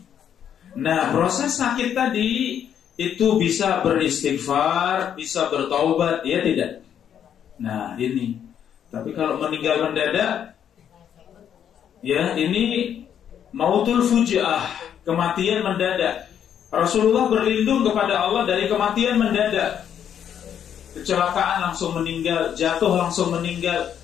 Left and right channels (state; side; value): quieter; right; 9.1 dB